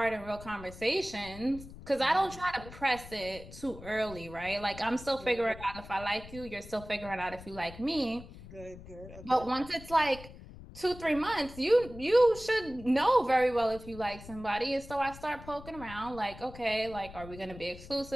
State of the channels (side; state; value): left; noise; rumble, 16 dB below the sound